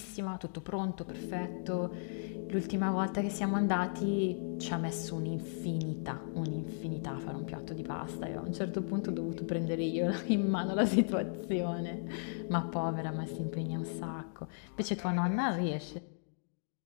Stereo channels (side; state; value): right; silent; digital silence